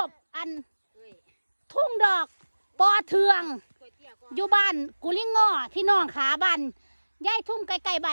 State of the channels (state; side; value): inverted; both; correlation -1.00